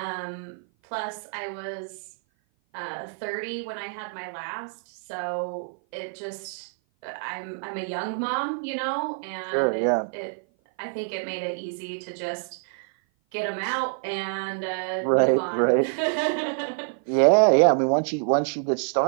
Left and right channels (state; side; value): silent; left; 56 dB below the other